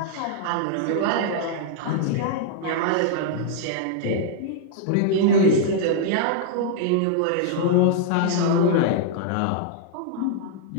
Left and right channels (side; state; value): both; different; correlation -0.01